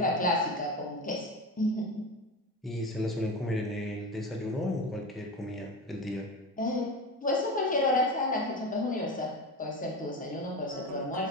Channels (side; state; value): both; normal; correlation 0.24